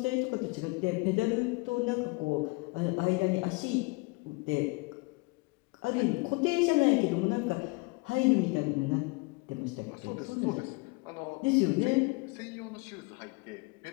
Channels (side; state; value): right; quieter; 27.5 dB